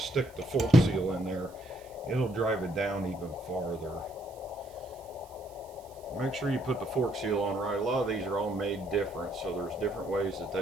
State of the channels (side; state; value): right; noise; hiss, 26 dB below the sound